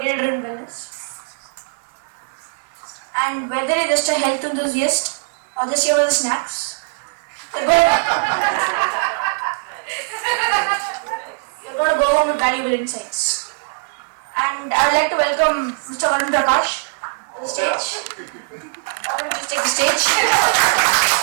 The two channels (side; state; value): left; silent; digital silence